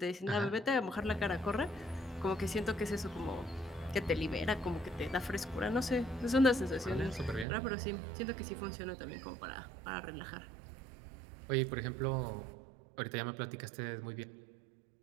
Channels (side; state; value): left; drops out; at 7.5 s